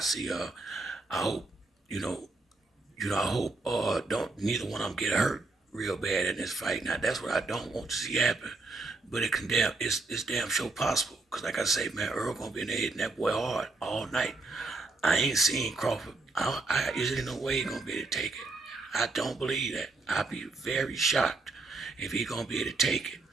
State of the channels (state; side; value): quieter; left; 3.5 dB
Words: see. I hope, you know, I hope don't neither one of them get hurt real bad in this fight. Now that's what I don't want to see happen. But it's damn sure possible. Cause like I say, man, Earl gonna be in there hitting that boy hard all night. I ain't seen Crawford. Is there no way he gonna be able to take it? I don't believe that. I'd be very shocked if he gonna be able to take it